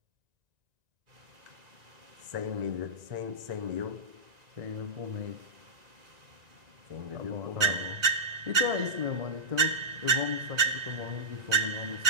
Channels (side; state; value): left; late; 1.9 ms